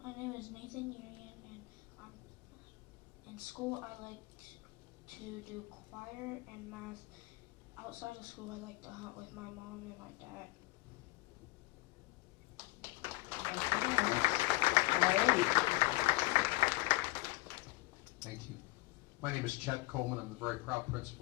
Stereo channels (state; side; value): quieter; right; 21.8 dB